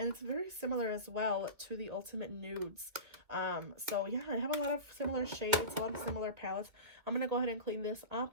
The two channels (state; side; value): late; left; 2.3 ms